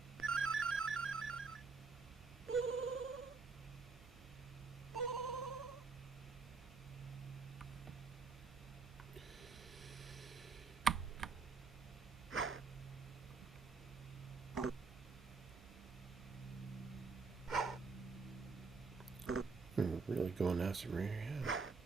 Really going after me, yeah.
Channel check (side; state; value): left; quieter; 4.7 dB